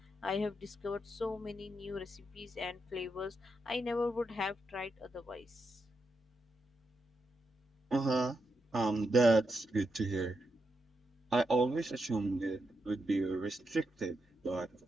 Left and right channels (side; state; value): both; normal; correlation 0.84